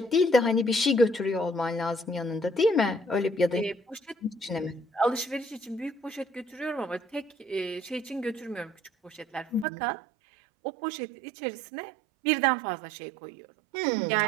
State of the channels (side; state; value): left; drops out; at 9.7 s